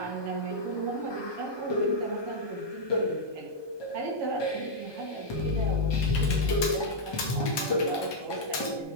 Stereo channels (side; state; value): right; late; 1.2 ms